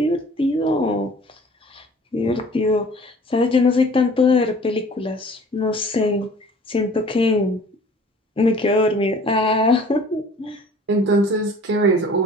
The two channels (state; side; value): normal; both; correlation 0.49